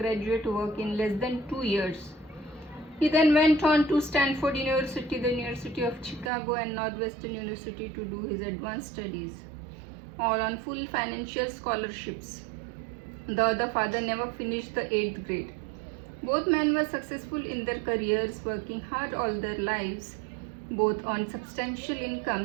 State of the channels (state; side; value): drops out; left; at 6.3 s